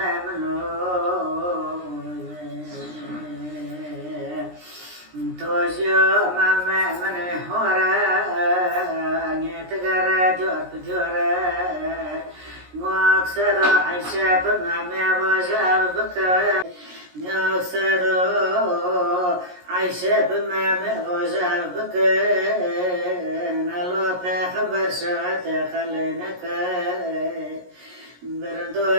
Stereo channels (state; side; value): late; left; 17 ms